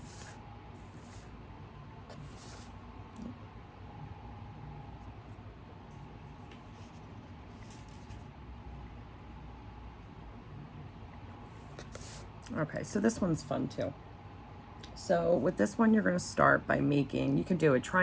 okay, so this one's fun too. So with this one, you're going to start by making, you can do a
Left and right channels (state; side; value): identical; both; correlation 1.00